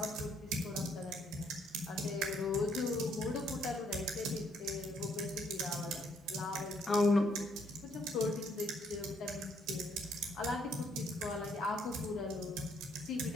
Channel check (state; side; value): normal; both; correlation 0.68